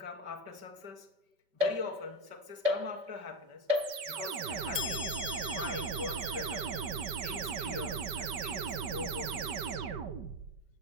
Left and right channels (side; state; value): left; late; 5.2 ms